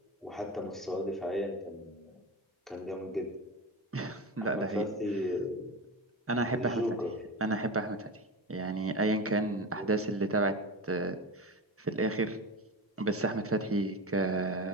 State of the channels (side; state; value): both; normal; correlation 0.25